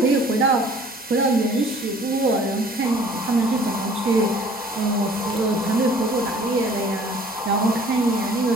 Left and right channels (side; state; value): both; normal; correlation 0.52